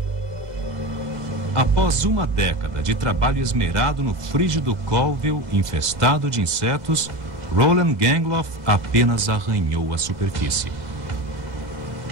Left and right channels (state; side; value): late; left; 2.0 ms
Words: Após uma década de trabalho esmerado no frígido Colville infestado de insetos, Roland Gangloff apenas arranhou a superfície.